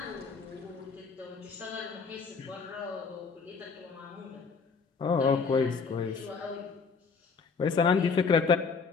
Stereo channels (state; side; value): quieter; right; 5.1 dB